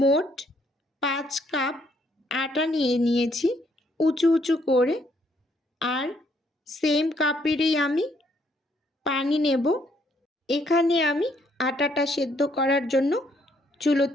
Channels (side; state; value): both; normal; correlation 0.70